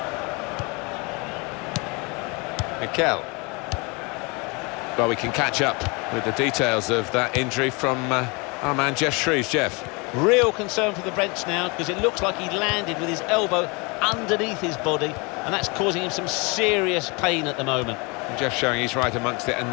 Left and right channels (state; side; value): quieter; right; 29.0 dB